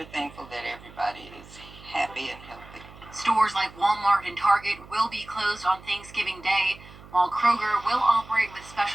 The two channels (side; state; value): right; noise; hum, 20 dB below the sound